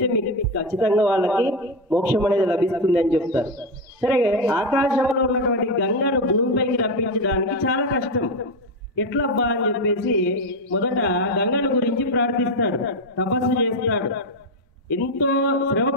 మీకు ఖచ్చితంగా వాళ్ళకి మోక్షం అనేది లభిస్తుంది అని చెప్తారు. సరే, ఆకాశంలో ఉన్నటువంటి గంగను భూమిపైకి రప్పించడానికి చాలా కష్టం. ఎట్లబ్బా అని చెప్పేసి మొదట గంగను గురించి ప్రార్థిస్తాడు, తపస్సు చేస్తాడు. ఎంతో శ్రమ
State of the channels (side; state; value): both; normal; correlation 0.10